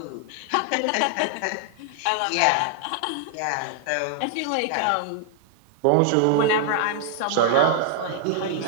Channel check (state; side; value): different; both; correlation -0.01